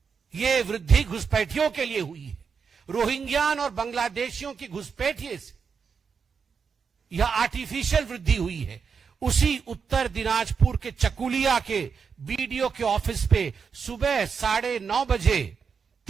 यह वृद्धि घुसपैठियों के लिए हुई है। रोहिंग्यान और बांग्लादेशियों की घुसपैठिए से यह आर्टिफिशियल वृद्धि हुई है। उसी उत्तर दिनाजपुर के चकुलिया के बीडीओ के ऑफिस पे सुबह 9:30 बजे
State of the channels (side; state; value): left; quieter; 6.0 dB